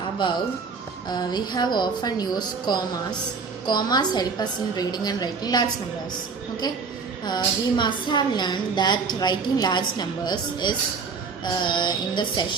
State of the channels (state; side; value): quieter; left; 5.1 dB